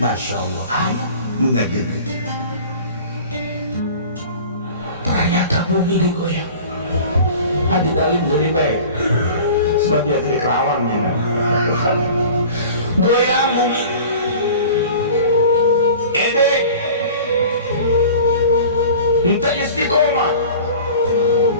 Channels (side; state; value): both; inverted; correlation -0.42